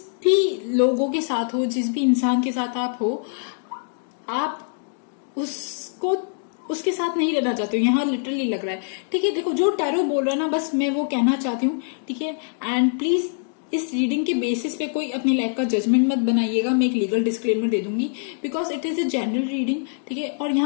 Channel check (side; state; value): right; silent; 63 dB below the other